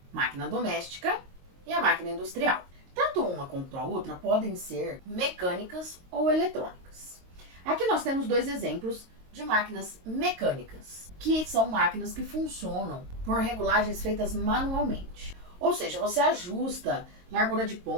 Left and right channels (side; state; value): left; late; 22 ms